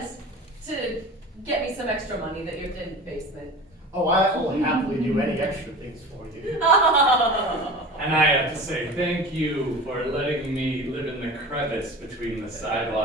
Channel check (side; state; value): both; normal; correlation 0.36